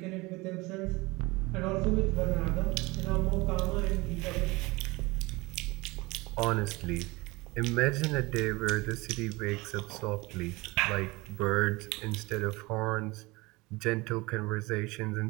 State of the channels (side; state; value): left; quieter; 23.1 dB